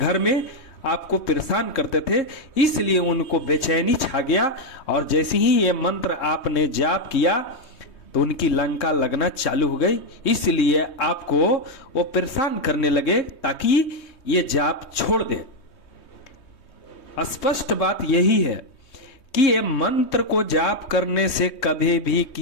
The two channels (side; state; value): right; late; 3.2 ms